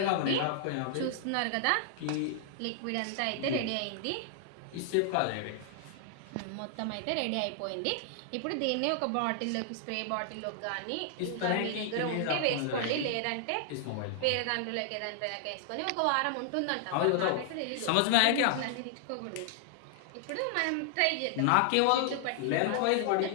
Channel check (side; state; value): both; different; correlation -0.01